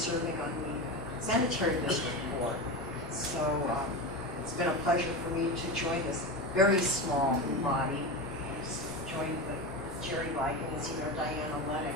on the sanitary district board. So it's been a pleasure for me to join this very small body. Joined with Jerry Like and as you know, Diana Lennox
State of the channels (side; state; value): both; normal; correlation 0.22